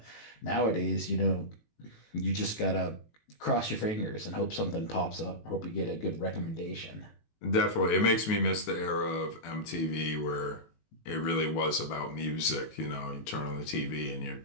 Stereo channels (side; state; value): right; late; 19 ms